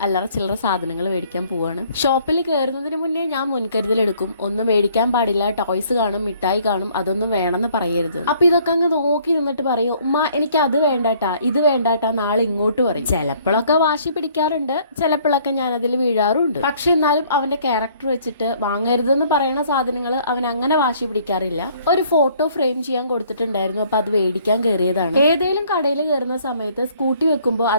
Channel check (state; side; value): inverted; both; correlation -0.60